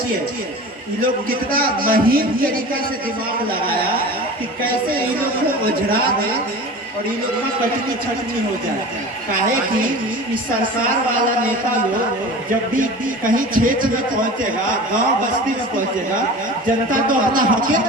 ये लोग कितना महीन तरीका से दिमाग लगाया कि कैसे इन लोग को उजड़ा दे और इन लोग का कटनी छटनी हो जाए। काहे कि इस सरकार वाला नेता लोग जब भी कहीं क्षेत्र में पहुंचेगा, गांव बस्ती में पहुंचेगा, जनता तो अपना हक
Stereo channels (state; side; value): normal; both; correlation 0.36